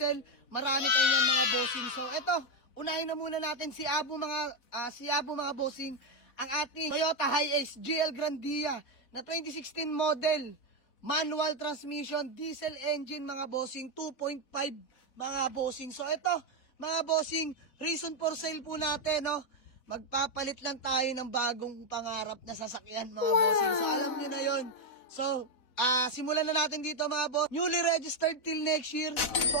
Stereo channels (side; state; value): right; late; 4.0 ms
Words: Marami tayong yan mga bossing. So ito, unahin na muna natin si Abu mga bossing. Ang ating Toyota Hiace GL Grandia na 2016 model, manual transmission, diesel engine mga bossing, 2.5 mga bossing. So ito mga bossing, reason for sale po natin, no? Magpapalit lang tayo ng bagong pangarap na sasakyan mga bossing. So alam niyo na yon. So simulan na natin dito mga boss. Newly registered till next year.